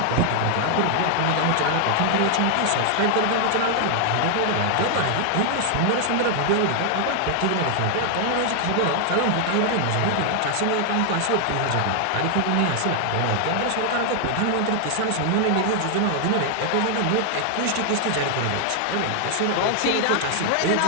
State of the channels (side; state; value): both; different; correlation 0.00